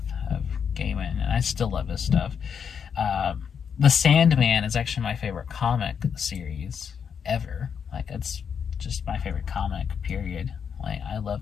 of Gaiman, and I still love his stuff. The Sandman is actually my favorite comic series ever. It's just my favorite comic, period. I love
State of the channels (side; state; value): right; quieter; 7.1 dB